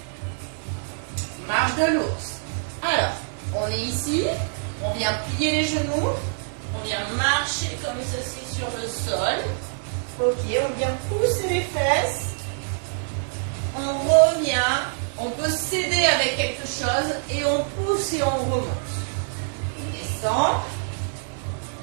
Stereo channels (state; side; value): silent; left; 55 dB below the other